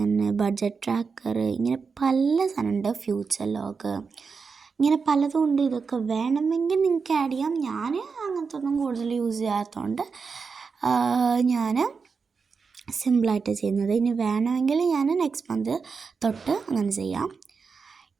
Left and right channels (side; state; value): left; quieter; 5.2 dB